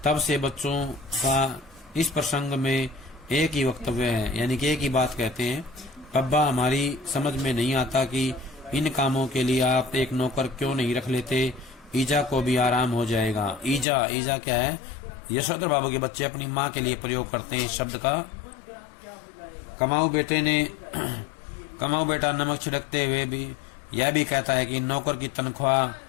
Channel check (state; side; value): drops out; right; at 13.9 s